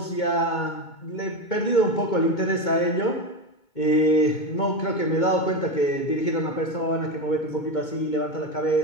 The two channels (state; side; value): late; right; 2.2 ms